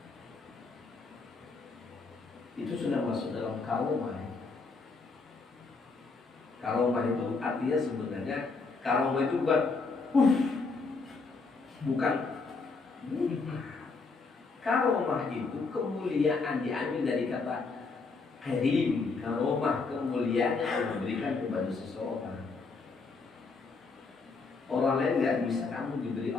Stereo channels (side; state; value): right; quieter; 4.2 dB